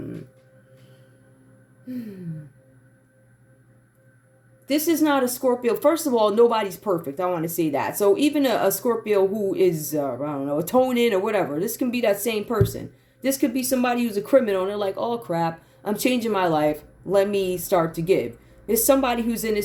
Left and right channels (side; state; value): both; identical; correlation 1.00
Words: this is not a Scorpio. First of all, nobody's perfect. I want to say that. So even a Scorpio who is, I don't know, atoning or whatever, this can be that same person. This could be somebody who's a criminal and they're like, oh crap, I'm changing my life. Let me start to give. There's somebody who's in